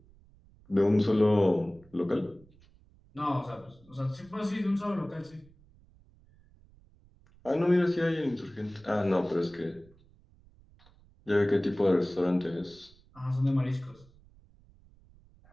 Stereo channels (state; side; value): noise; right; rumble, 28 dB below the sound